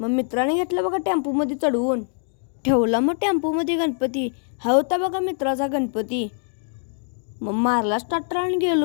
मित्राने घेतला बघा टेम्पोमध्ये चढवून. ठेवला मग टेम्पोमध्ये गणपती. हा होता बघा मित्राचा गणपती. मग मारला स्टार्टर आणि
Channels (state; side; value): silent; right; 59 dB below the other